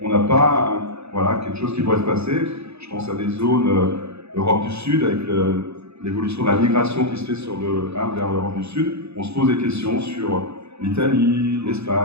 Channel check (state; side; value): late; left; 0.79 ms